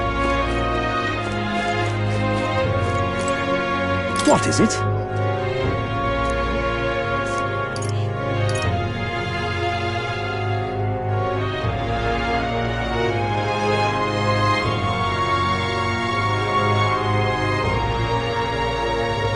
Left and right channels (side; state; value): both; identical; correlation 1.00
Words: What is it?